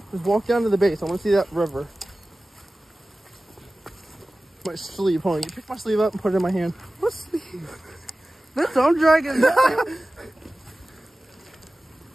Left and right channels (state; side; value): normal; both; correlation 0.96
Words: Just walk down to the base. I want to see that river. My sleeve. Hold on. You pick my sleeve up and put it in my hand. What sleeve? This I'm dragging.